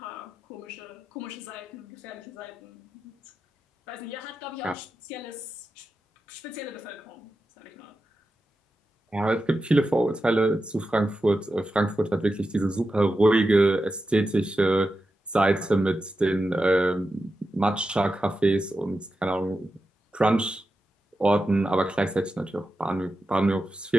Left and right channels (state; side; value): normal; both; correlation 0.90